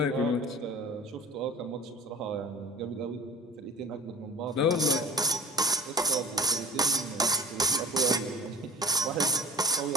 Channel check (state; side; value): normal; both; correlation 0.45